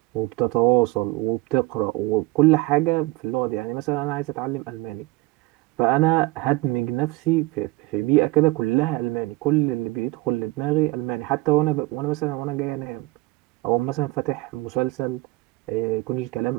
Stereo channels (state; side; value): quieter; left; 20.3 dB